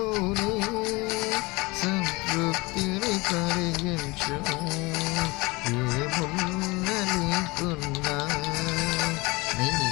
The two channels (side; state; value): right; quieter; 24.3 dB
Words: సంతృప్తిని కలిగించు. ఏమున్నా లేకున్నా నీ